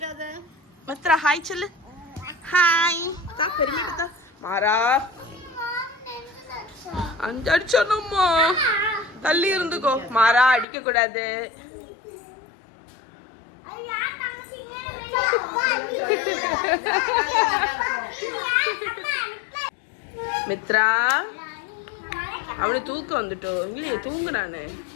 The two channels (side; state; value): right; drops out; at 10.7 s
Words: மித்ரா ஹாய் சொல்லு. ஹாய் பெருமை. மாறா அடிச்சோம்மா, தள்ளி இருந்துக்கோ. மாறா அடிக்க கூடாது. மித்ரா அவனுக்கு தூக்கம் வந்துட்டோம் இல்லையே, தூங்கு. நானு